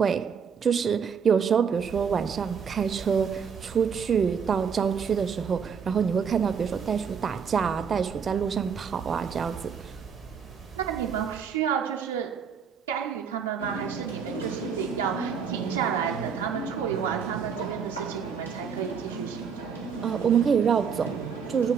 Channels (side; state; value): left; quieter; 6.7 dB